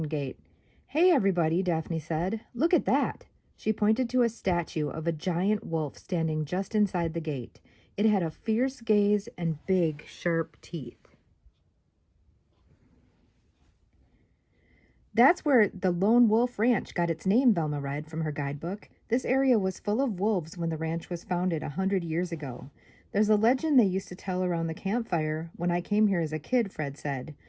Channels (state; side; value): identical; both; correlation 1.00